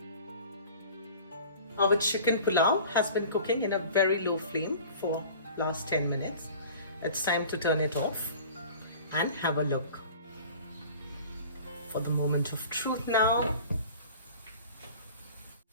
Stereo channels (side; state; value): both; inverted; correlation -0.43